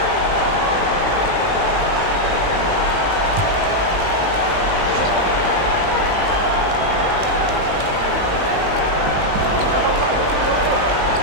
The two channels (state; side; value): late; left; 19 ms